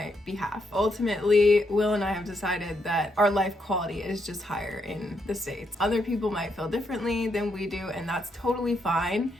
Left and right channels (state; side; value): normal; both; correlation 0.78